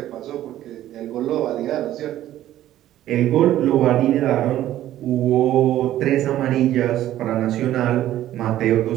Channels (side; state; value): left; quieter; 13.2 dB